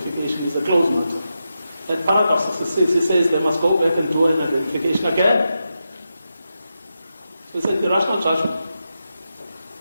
is a closed matter. At paragraph 66, he says they must go back and do an identification again. So it's an irrational judgment.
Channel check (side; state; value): both; inverted; correlation -0.88